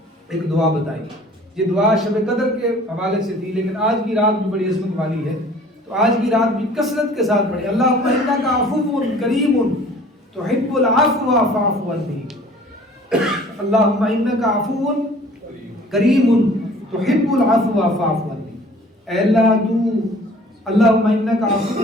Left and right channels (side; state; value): both; normal; correlation 0.50